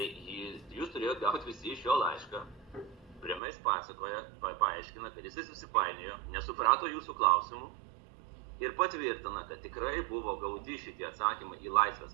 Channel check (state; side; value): drops out; left; at 3.4 s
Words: jūs turėjot gauti visi iš jo laišką, kuriame jis pasakoja, paaiškina, kad jis susipainiojo, nesuprato jūsų klausimų ir patvirtina, kad tikrai buvo gauti šitie atsakymai į